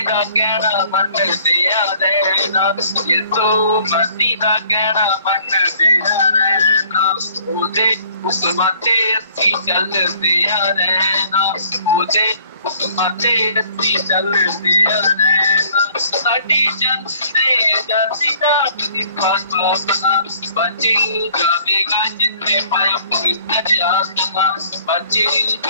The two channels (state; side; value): inverted; both; correlation -0.57